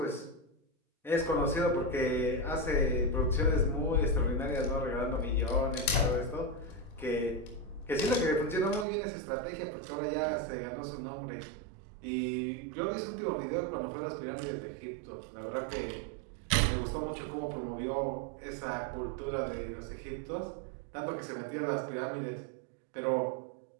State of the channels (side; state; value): left; drops out; at 8.8 s